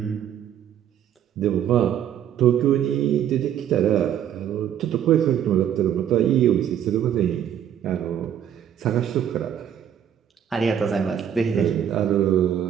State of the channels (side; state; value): left; quieter; 9.7 dB